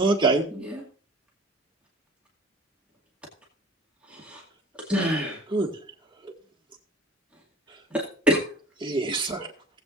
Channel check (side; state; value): both; normal; correlation 0.44